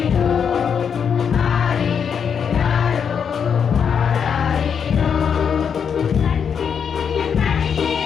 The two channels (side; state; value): right; quieter; 7.1 dB